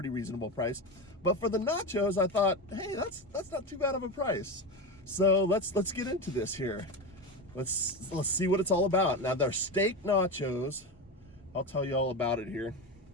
reasonable price. But for the nachos, I thought, hey, that's not too bad of a price. So let's get into this here. Let's see what it's all about. Now, they're steak nachos. I'll tell you all about it here.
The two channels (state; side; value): normal; both; correlation 0.20